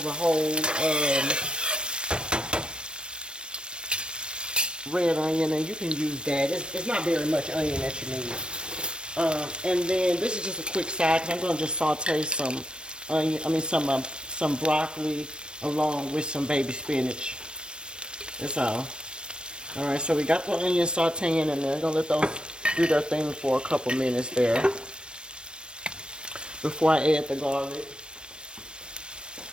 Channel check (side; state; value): left; late; 0.054 ms